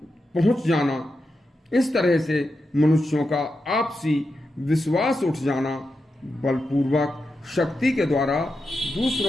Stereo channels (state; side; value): normal; both; correlation 0.88